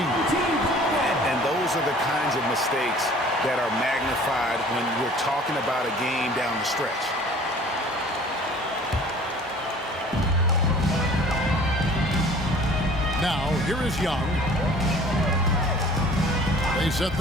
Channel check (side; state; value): both; normal; correlation 0.49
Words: And those are the kinds of mistakes that are magnified when we're talking about a game down the stretch. Now, here is Young. They set